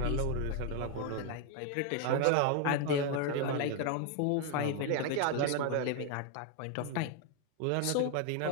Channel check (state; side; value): different; both; correlation 0.01